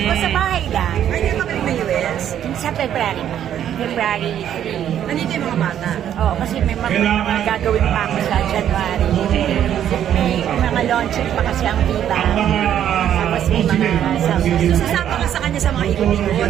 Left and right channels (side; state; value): left; quieter; 10.3 dB